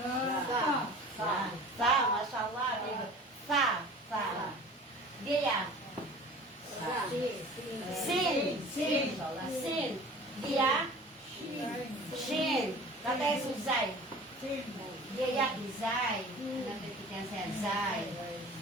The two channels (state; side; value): normal; both; correlation 0.42